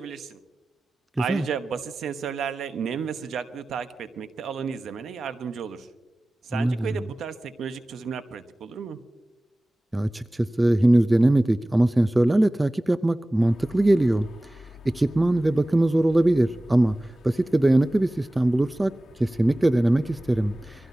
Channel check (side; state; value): both; normal; correlation 0.97